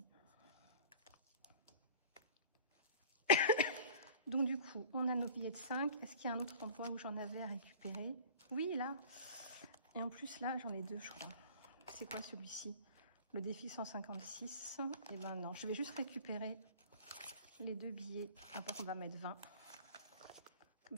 Donc du coup, on a nos billets de 5. Est-ce qu'il y a un autre endroit où j'en avais à récupérer? Oui, là. Et en plus, là, j'en ai 2, je crois. C'est quoi celui-ci? Le défi 156. Et ben non, je vais juste récupérer les 2 billets. Après, on va mettre 20. Comme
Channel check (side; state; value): both; inverted; correlation -0.44